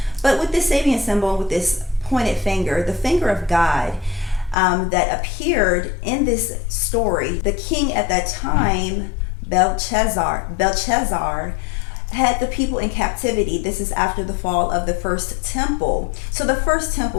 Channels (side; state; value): right; drops out; at 4.5 s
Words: But with this Sabian symbol, with this pointed finger, the finger of God, that appeared in this story, the king at that time, Belshazzar, had the people in captivity. This is after the fall of the first temple. So the first